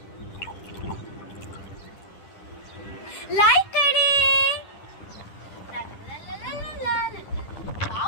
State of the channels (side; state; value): right; late; 10 ms